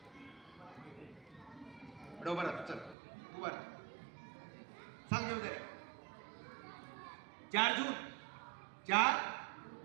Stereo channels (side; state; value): left; drops out; at 3.0 s